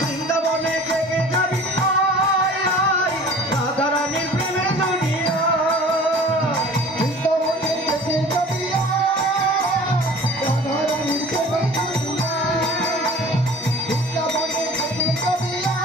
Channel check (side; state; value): both; normal; correlation 0.44